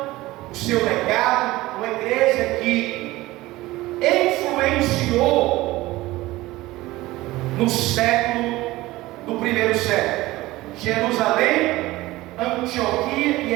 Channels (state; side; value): quieter; left; 18.4 dB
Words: o seu legado, uma igreja que influenciou no século do primeiro século: Jerusalém, Antioquia e